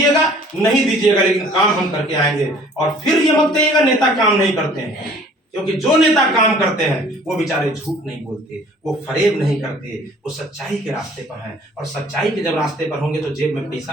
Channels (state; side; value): normal; both; correlation 0.53